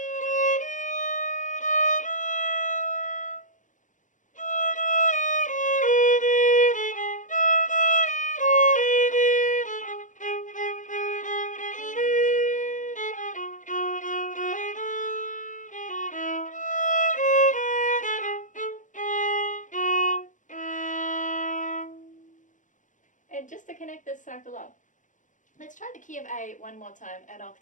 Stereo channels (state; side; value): late; right; 0.37 ms